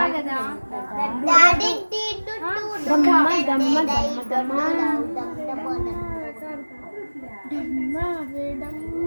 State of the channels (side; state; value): both; inverted; correlation -1.00